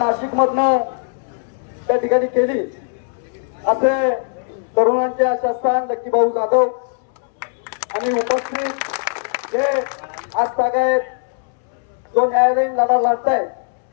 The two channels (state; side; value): silent; right; 66 dB below the other